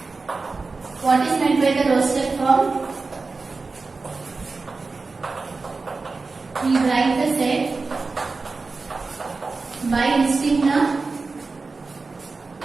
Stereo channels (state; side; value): quieter; left; 4.0 dB